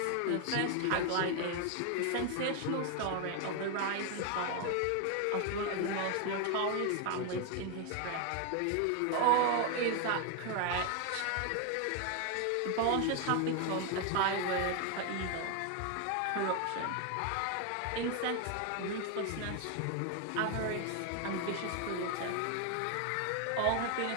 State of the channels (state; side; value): different; both; correlation 0.01